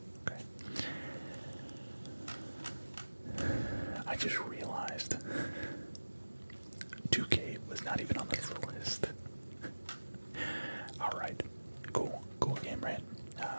Okay. I just realized 2K was not even on this list. Alright. Cool game, right?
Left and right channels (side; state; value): both; inverted; correlation -1.00